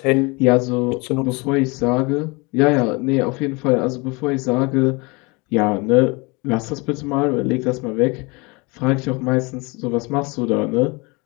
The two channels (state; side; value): quieter; right; 27.6 dB